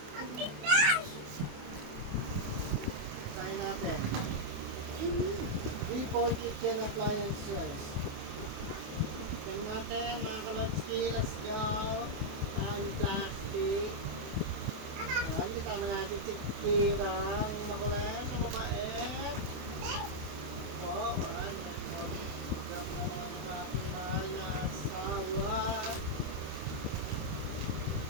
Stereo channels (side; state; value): left; late; 28 ms